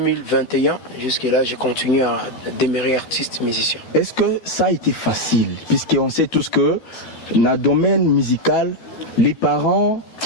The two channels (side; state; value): right; late; 12 ms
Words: jusque-là, j'ai continué à demeurer artiste musicien. Est-ce que ça a été facile? Puisqu'on sait tous que dans le domaine musical, les parents